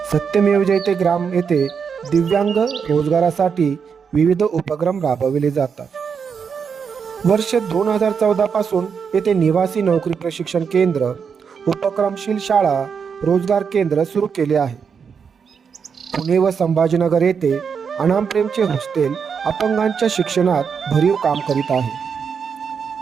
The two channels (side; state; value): left; quieter; 6.4 dB